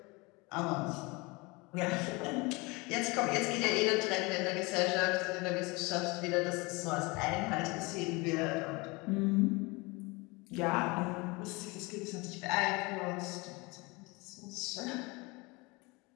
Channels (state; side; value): quieter; right; 25.7 dB